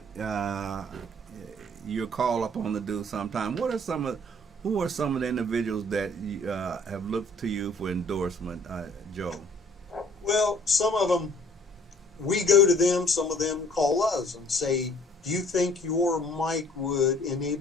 you're called upon to do sometime, who are some of the individuals that have looked to you for endorsement, Joe? Well, some of them, we go to them, some of them call us and say, do you think your mic would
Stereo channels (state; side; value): normal; both; correlation 0.56